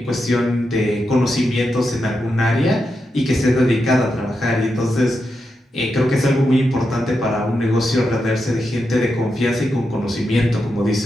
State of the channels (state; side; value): normal; both; correlation 0.86